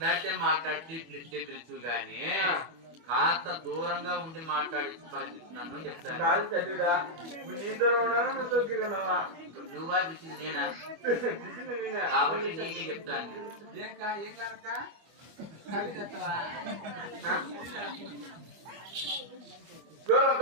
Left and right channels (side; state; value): left; late; 24 ms